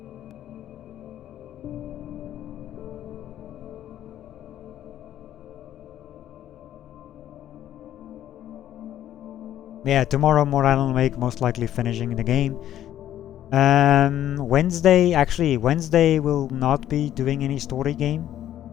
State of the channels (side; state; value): right; quieter; 11.8 dB